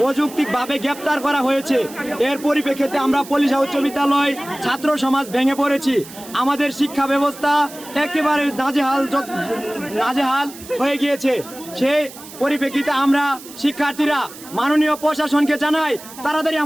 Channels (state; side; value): noise; right; hiss, 17 dB below the sound